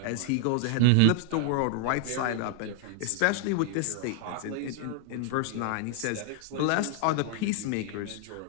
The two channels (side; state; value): both; different; correlation 0.00